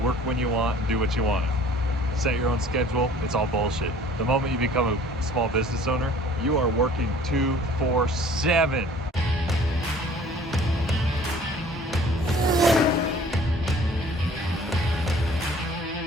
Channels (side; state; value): both; normal; correlation 0.51